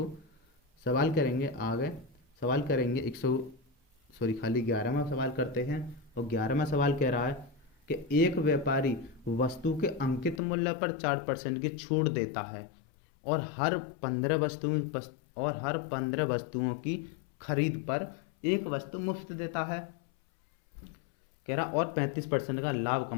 सवाल करेंगे आगे, सवाल करेंगे 100 सॉरी खाली 11वां सवाल करते हैं। और 11वां सवाल कह रहा है कि एक व्यापारी वस्तु के अंकित मूल्य पर 4% की छूट देता है और हर 15 वस्तुओं की खरीद पर एक वस्तु मुफ्त देता है। कह रहा और 35% का लाभ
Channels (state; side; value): drops out; right; at 10.4 s